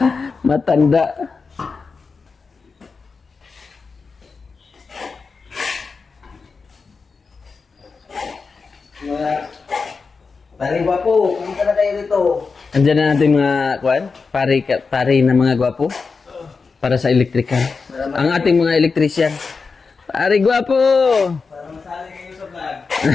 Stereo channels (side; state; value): right; quieter; 4.7 dB